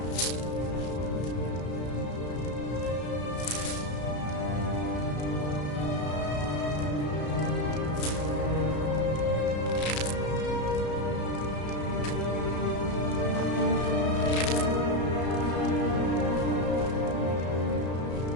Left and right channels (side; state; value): right; late; 34 ms